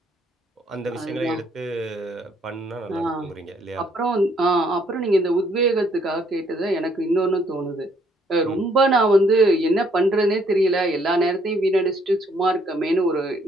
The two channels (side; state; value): both; normal; correlation 0.67